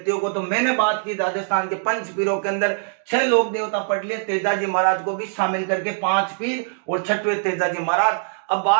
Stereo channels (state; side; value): silent; left; 64 dB below the other